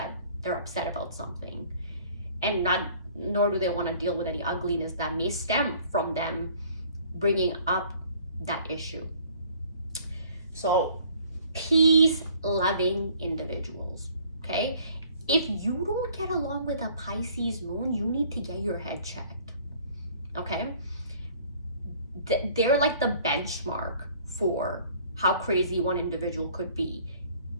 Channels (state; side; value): inverted; both; correlation -0.55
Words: they're upset about something, and nor do they want to deal with any ugliness that may stem from them bringing up that issue. So peace loving individuals, okay? If you don't get along with a Pisces moon, you need to get your head checked, okay? They're like the benchmark for how crazy one individual could be.